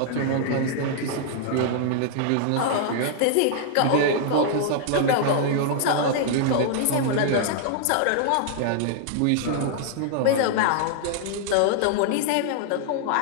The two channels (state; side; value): different; both; correlation -0.01